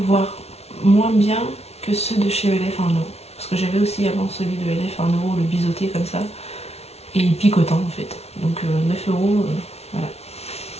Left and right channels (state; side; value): late; right; 0.31 ms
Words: voire moins bien que ceux de chez ELF 1 €. Parce que j'avais aussi avant celui de ELF 1 €, le biseauté comme ça. Et picotant en fait. Donc 9 €, voilà.